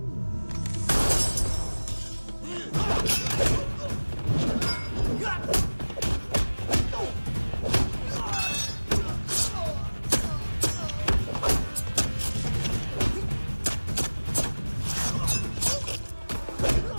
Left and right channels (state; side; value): inverted; both; correlation -1.00